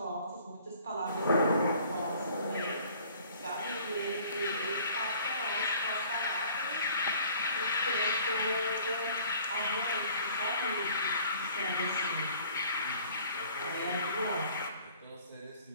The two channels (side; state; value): both; inverted; correlation -0.54